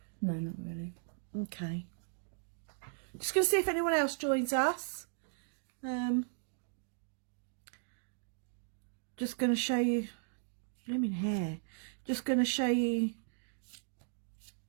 No, not really. Okay. Just going to see if anyone else joins us. Just going to show you... Blooming hair. Just going to show you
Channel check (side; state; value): left; silent; digital silence